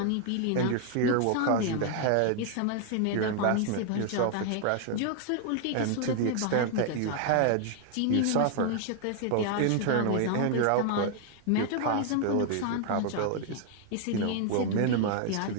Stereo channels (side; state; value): both; different; correlation 0.00